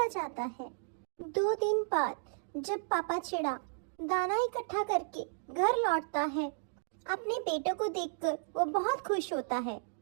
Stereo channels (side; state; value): left; silent; digital silence